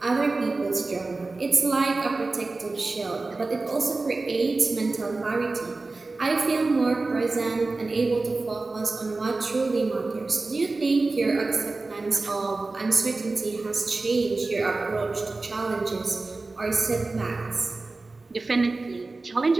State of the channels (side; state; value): left; quieter; 3.5 dB